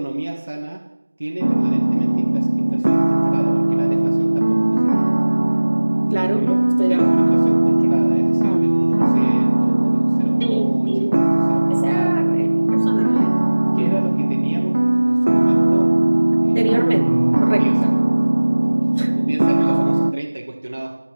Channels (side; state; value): both; inverted; correlation -1.00